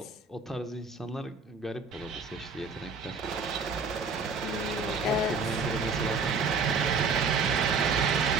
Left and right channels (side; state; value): left; quieter; 4.4 dB